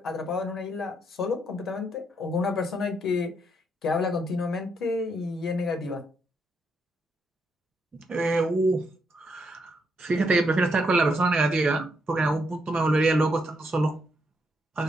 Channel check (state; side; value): normal; both; correlation 0.77